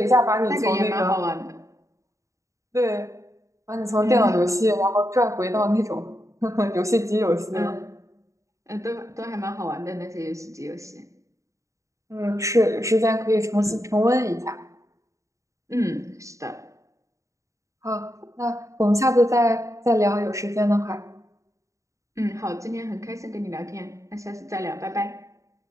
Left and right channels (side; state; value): left; late; 0.15 ms